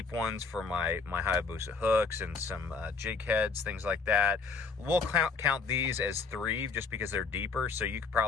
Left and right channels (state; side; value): quieter; right; 4.7 dB